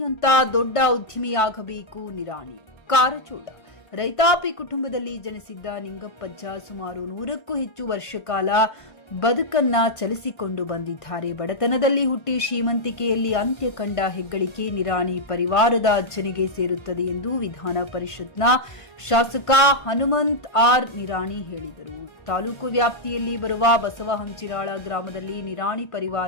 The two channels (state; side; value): late; right; 1.5 ms